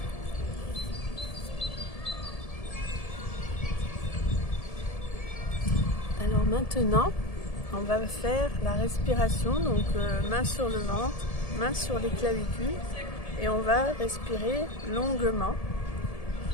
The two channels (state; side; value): late; right; 1.7 ms